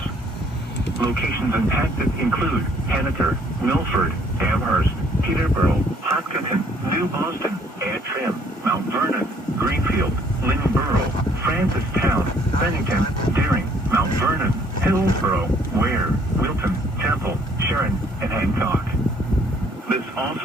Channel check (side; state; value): both; normal; correlation 0.62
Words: Locations impacted include Annaker, Milford, Amherst, Peterborough, Hopkinton, New Boston, Antrim, Mount Vernon, Greenfield, Lynnborough, Francistown, Bennington, Deering, Mount Vernon, Hillsborough, Ware, Wilton, Temple, Sharon, and Hancock. This